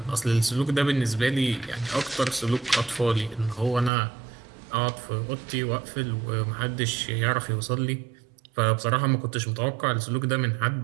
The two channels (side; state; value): left; drops out; at 3.9 s